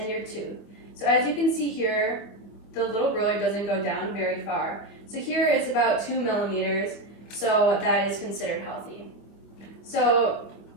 your tooth. So as you can see here, the little ruler doesn't go down very far. So here it's about 2 millimeters, so that is considered healthy. So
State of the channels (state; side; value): late; right; 25 ms